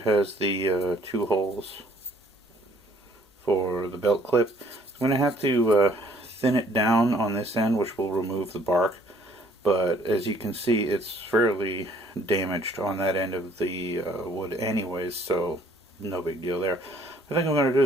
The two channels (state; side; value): normal; both; correlation 0.60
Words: has the 2 holes for the belt clip, I'm going to have to thin it down on this end, which will remove the bark. But as you can see, it's fairly damaged on that end of the wood anyways, so no big deal there. What I think I'm going to do